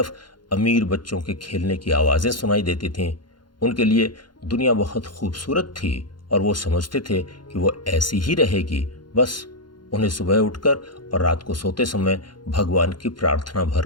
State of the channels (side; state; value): right; late; 0.71 ms